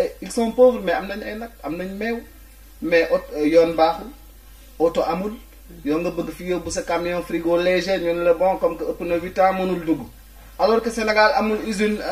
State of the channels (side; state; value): both; identical; correlation 1.00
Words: ils sont pauvres mais am nañ ay nag am nañ meew mais yoon baaxul oto amul yow nga bëgg fi yóbbu sa camion frigo léger ñu ne la bon comme que ëpp na 8 ans mënul dugg alors que Sénégal amul usine